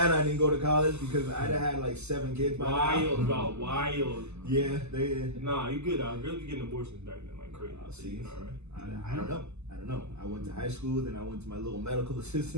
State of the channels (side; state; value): left; late; 0.81 ms